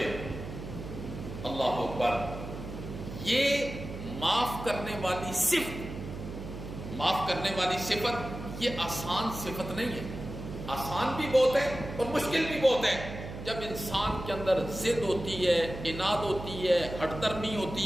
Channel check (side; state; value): right; noise; hum, 9 dB below the sound